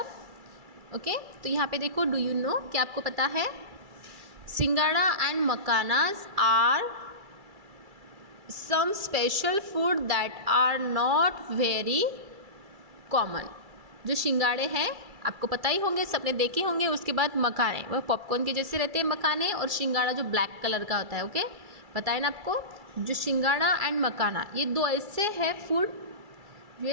ओके, तो यहाँ पे देखो, डू यू नो, क्या आपको पता है singhara and makhanas are some special food that are not very common. जो सिंगाड़े हैं आपको पता ही होंगे, सबने देखे होंगे। उसके बाद मखाने, वह पॉपकॉर्न के जैसे रहते हैं मखाने, और सिंगाड़ा जो ब्लैक कलर का होता है। ओके, पता है ना आपको। जो सिंगाड़ा एंड मखाना, ये दो ऐसे है फूड,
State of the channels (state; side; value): late; left; 2.3 ms